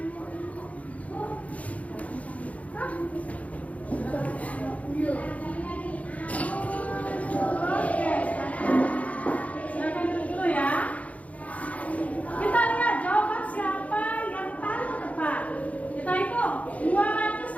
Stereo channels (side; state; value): right; late; 0.068 ms